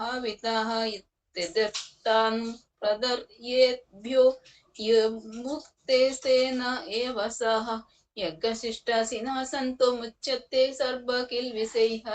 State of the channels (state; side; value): identical; both; correlation 1.00